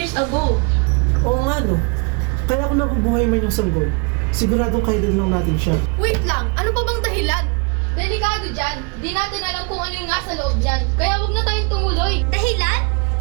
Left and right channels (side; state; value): left; quieter; 32.9 dB